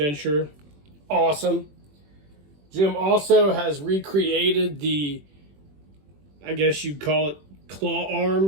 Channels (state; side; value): late; left; 21 ms